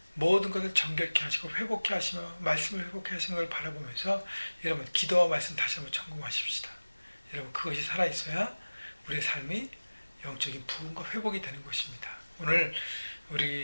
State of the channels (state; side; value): inverted; both; correlation -1.00